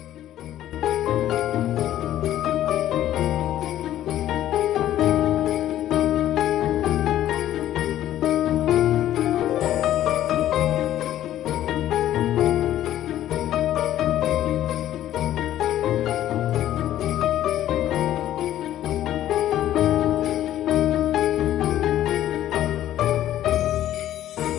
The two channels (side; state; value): right; quieter; 12.6 dB